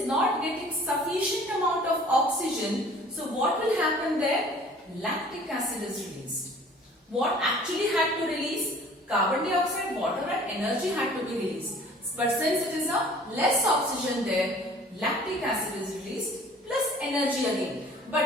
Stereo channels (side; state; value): both; normal; correlation 0.50